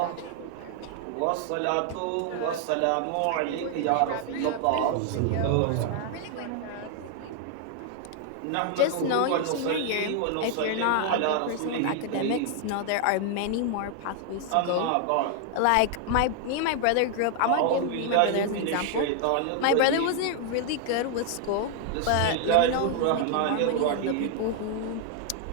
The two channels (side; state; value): both; different; correlation 0.00